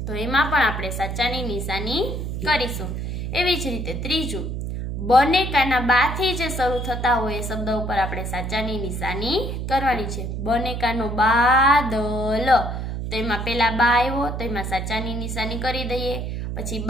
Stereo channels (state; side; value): noise; right; hum, 4 dB below the sound